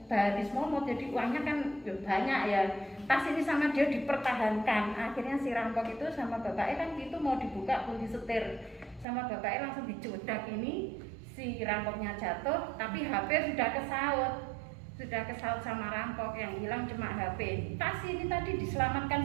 baris momot, jadi uangnya kan banyak ya. Tas ini sama dia dipertahankan. Akhirnya si rampok itu sama bapaknya kan itu mau dibuka kunci setir, sama bapaknya langsung dicodak ini, si rampoknya jatuh, tapi HP sudah kesaut sama rampok, yang hilang cuma HP. Tas ini tadi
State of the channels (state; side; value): drops out; left; at 9.1 s